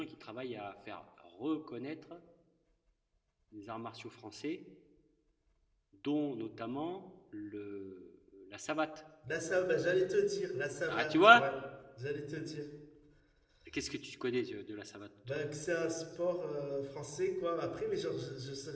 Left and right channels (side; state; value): both; identical; correlation 1.00